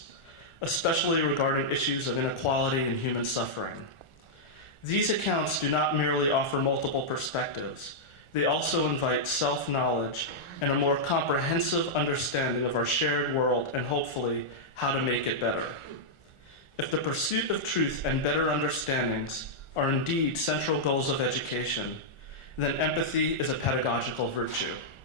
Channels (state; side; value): late; right; 1.4 ms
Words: especially regarding issues of inequality and human suffering. These accounts do not merely offer multiple perspectives, they also invite self-knowledge and a more comprehensive understanding of our shared world and hopefully how to make it better. If the pursuit of truth and better understandings are indeed central goals of education, then empathy is a pedagogical virtue.